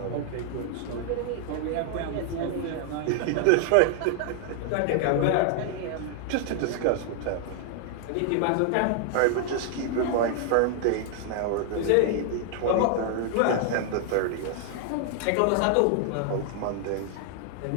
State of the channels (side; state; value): both; different; correlation 0.00